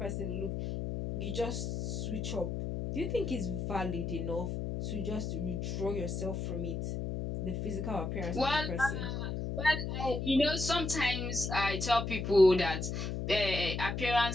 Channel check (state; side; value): noise; left; hum, 3 dB below the sound